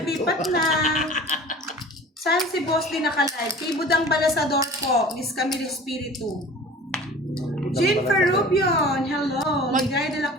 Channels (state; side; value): normal; both; correlation 0.42